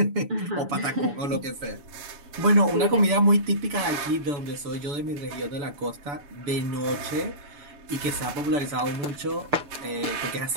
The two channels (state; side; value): late; left; 7.0 ms